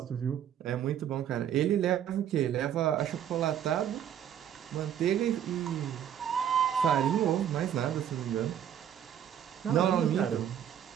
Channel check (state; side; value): quieter; left; 9.8 dB